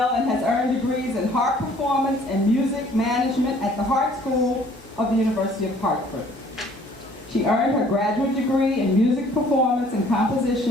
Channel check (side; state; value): both; normal; correlation 0.57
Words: and has earned degrees in harp performance and music management at the Hart School of the University of Hartford. She earned her graduate degree in music performance and